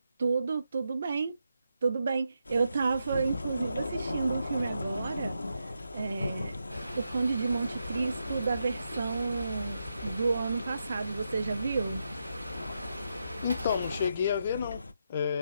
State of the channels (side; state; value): both; inverted; correlation -0.84